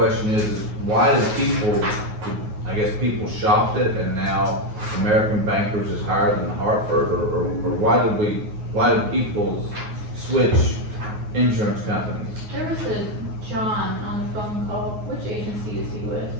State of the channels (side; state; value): left; late; 9.4 ms